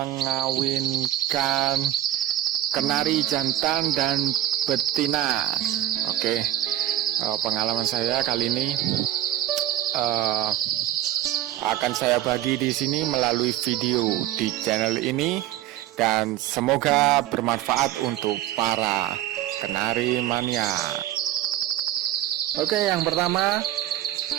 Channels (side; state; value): left; quieter; 13.4 dB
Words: kenari jantan dan betina. Oke, pengalaman saya kali ini akan saya bagi di sini melalui video di channel ini, dan semoga bermanfaat untuk para kenari mania. Oke, yang pertama,